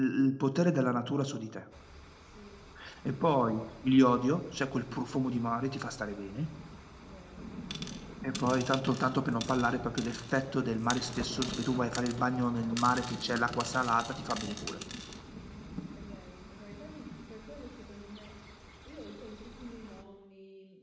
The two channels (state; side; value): identical; both; correlation 1.00